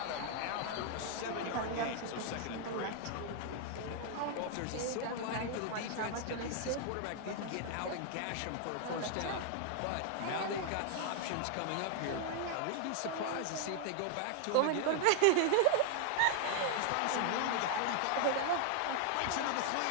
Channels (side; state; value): both; different; correlation 0.00